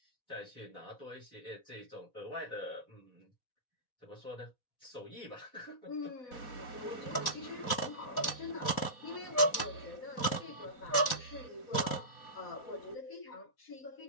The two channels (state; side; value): late; right; 4.1 ms